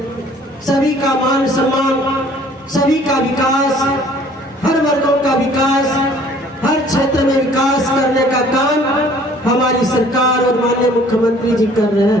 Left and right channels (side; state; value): both; normal; correlation 0.55